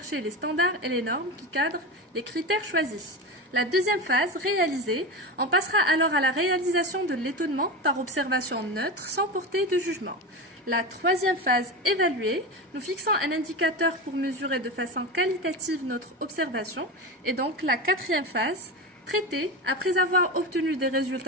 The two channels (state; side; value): normal; both; correlation 0.22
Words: les standards et les normes qui cadrent les critères choisis. La deuxième phase, réaliser, on passera alors à la réalisation de l'étonnement par observation neutre sans porter de jugement. La troisième phase, évaluer, nous fixons un indicateur pour mesurer de façon qualitative notre observation. Et donc la quatrième phase, traiter, après avoir obtenu des